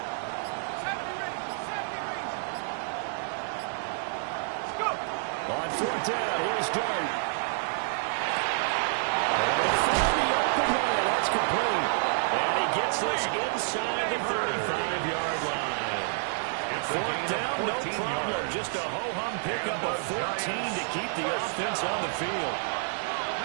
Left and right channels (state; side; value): silent; left; digital silence